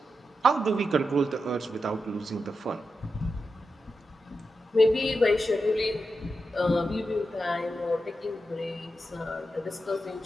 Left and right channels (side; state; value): both; normal; correlation 0.88